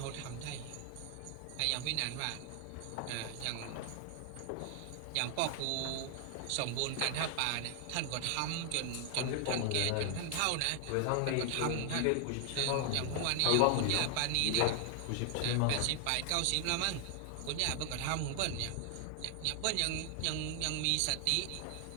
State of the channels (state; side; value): different; both; correlation 0.00